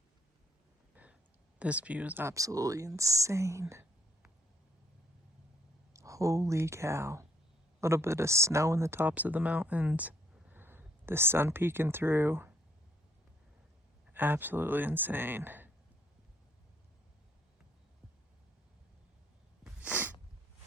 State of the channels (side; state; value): both; normal; correlation 0.69